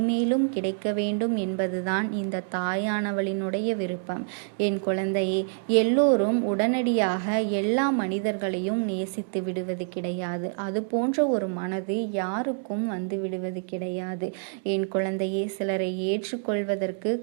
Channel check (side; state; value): left; silent; digital silence